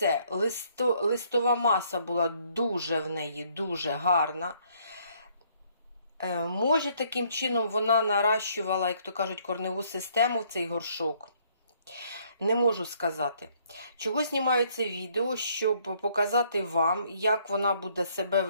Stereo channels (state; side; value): inverted; both; correlation -0.66